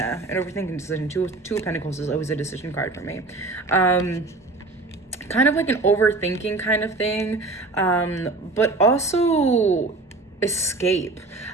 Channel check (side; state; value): left; quieter; 3.3 dB